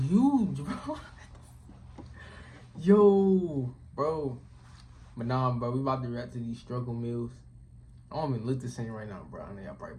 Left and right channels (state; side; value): identical; both; correlation 1.00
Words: huge, bro. Yo, bro. But nah, bro. We about to react to these struggle meals. I don't even look the same right now, bro. I know y'all probably